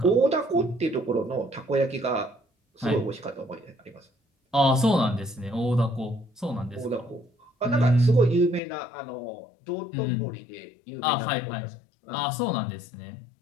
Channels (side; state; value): right; drops out; at 8.6 s